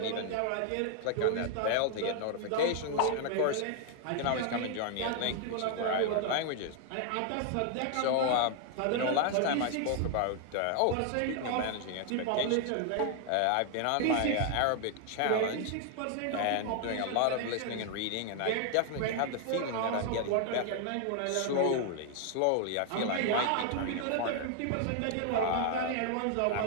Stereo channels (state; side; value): different; both; correlation 0.00